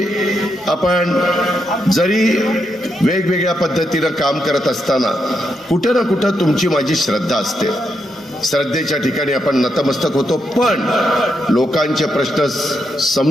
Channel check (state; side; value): normal; both; correlation 0.82